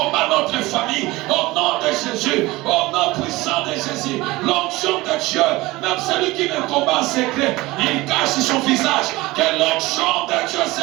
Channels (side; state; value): left; quieter; 20.2 dB